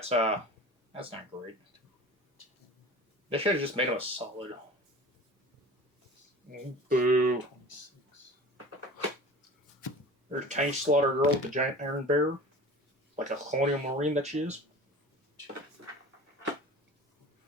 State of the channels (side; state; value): both; normal; correlation 0.39